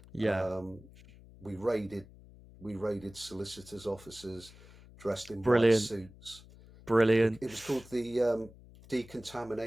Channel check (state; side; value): noise; left; hum, 21 dB below the sound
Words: yeah. Um, we raided we raided solicitors' offices dressed in white Brilliant, suits. brilliant. It was called the